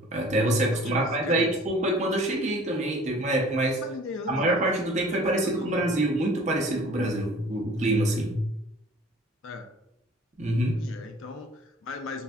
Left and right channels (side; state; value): both; normal; correlation 0.50